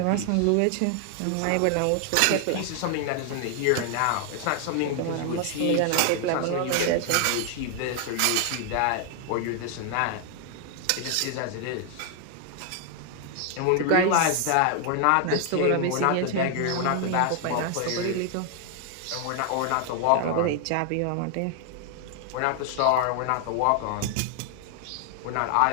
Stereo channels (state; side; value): different; both; correlation 0.00